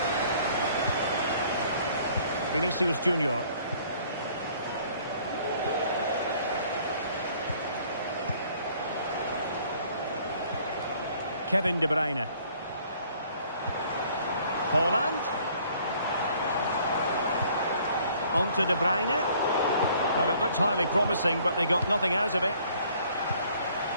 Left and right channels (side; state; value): both; inverted; correlation -0.58